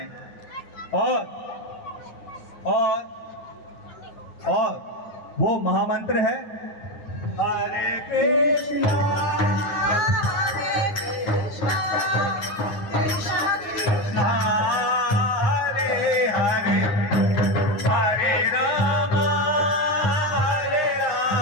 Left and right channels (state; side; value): late; right; 9.6 ms